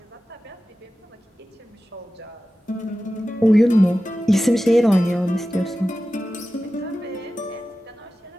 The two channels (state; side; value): normal; both; correlation 0.94